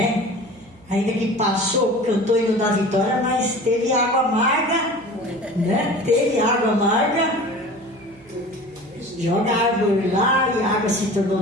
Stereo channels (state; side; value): noise; right; hum, 26 dB below the sound